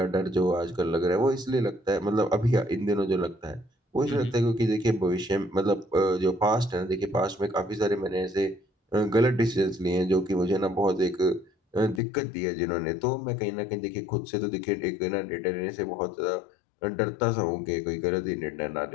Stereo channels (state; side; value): drops out; right; at 12.0 s